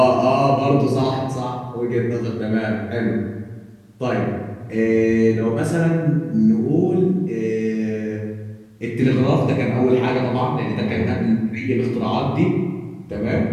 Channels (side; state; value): both; identical; correlation 1.00